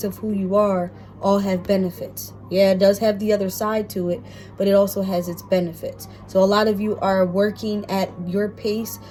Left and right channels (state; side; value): identical; both; correlation 1.00